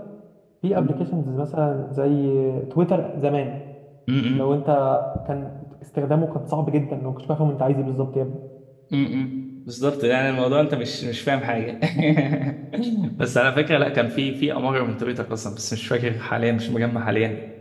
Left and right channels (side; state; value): both; identical; correlation 1.00